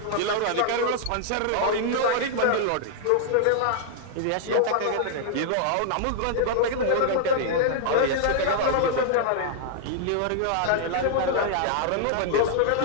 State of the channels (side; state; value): both; different; correlation -0.01